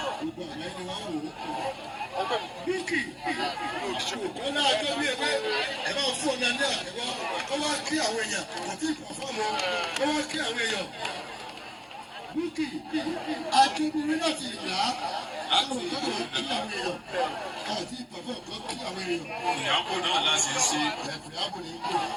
gbogbo àgbáyé ni wọ́n wò ó. Búkì ọ̀nà àjọbí ẹgbẹ́ ẹ máa fún ọ̀nà ní àtẹ̀wọ́ ó wá kí àwọn èèyàn kò tí ì pọ̀ fọ́ọ̀mù ó wá kí àwọn èèyàn. Búkì àjọbí láti ìlà àwọn ìjọba kí àwọn èèyàn àti ìpàfọ́ kan kí àwọn èèyàn. Ìyàbò náà láti ṣe. Ìyàbò ní kú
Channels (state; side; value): identical; both; correlation 1.00